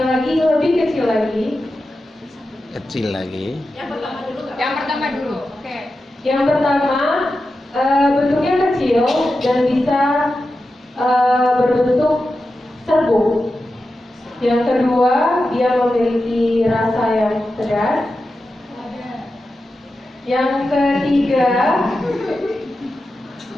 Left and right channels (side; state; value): both; normal; correlation 0.91